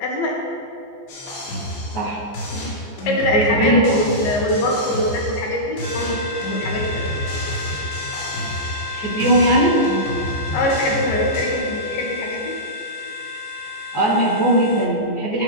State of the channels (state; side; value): late; right; 15 ms